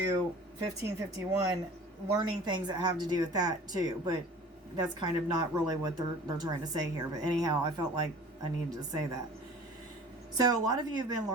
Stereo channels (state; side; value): normal; both; correlation 0.45